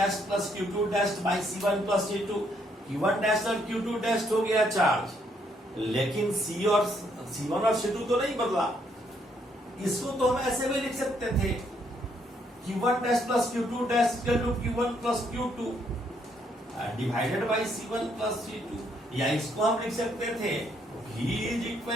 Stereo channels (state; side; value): normal; both; correlation 0.72